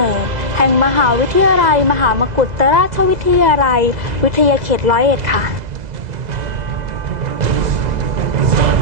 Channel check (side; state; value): left; late; 2.0 ms